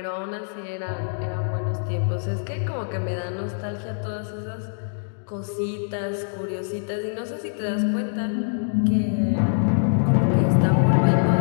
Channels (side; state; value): right; silent; digital silence